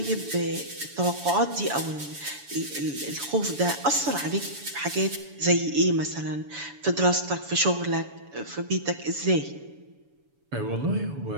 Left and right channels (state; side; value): late; left; 7.0 ms